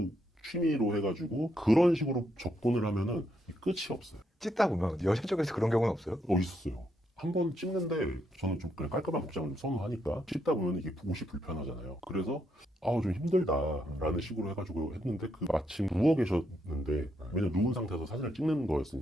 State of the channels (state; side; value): normal; both; correlation 0.77